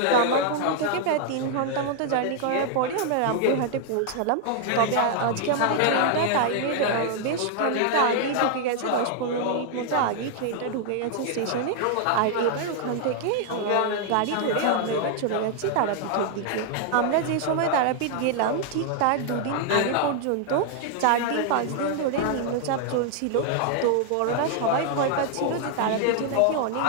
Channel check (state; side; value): different; both; correlation 0.00